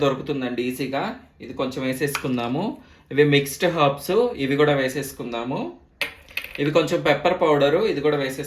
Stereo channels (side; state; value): both; identical; correlation 1.00